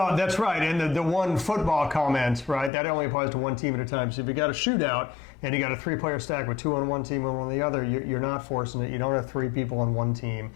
that's right. And the one football comment, right, that only applies to one team at a time. So if you got a shootout and you got a 3-player stack with 2 on one team and 1 on the other, you're not forcing it. You don't have 3 people on one team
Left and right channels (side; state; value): right; drops out; at 2.7 s